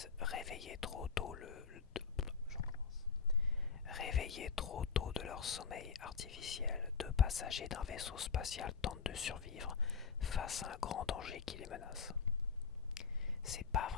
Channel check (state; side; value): quieter; right; 5.7 dB